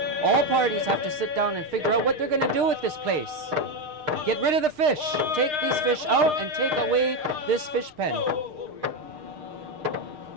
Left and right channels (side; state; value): left; late; 6.6 ms